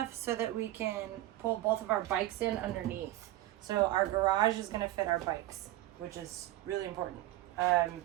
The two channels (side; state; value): left; quieter; 15.7 dB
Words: so that we can pull both of our bikes in underneath. So our garage is gonna fit our bikes, which is really important.